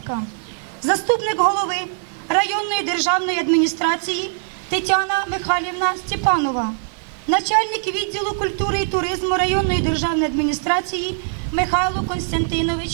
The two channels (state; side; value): silent; left; digital silence